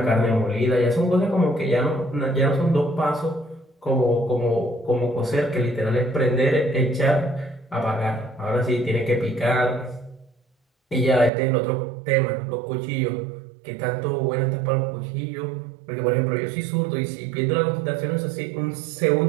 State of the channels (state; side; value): drops out; left; at 11.3 s